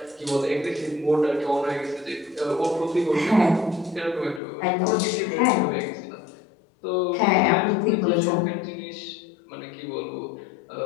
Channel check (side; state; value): right; drops out; at 4.4 s